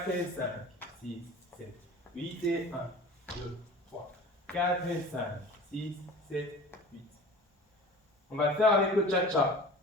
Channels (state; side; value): normal; both; correlation 0.40